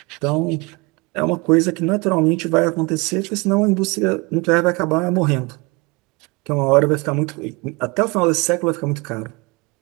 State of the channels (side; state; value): left; quieter; 27.1 dB